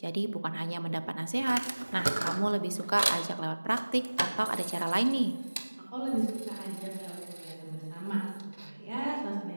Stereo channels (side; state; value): both; inverted; correlation -1.00